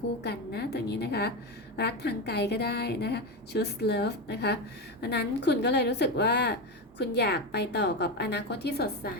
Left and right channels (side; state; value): both; normal; correlation 0.15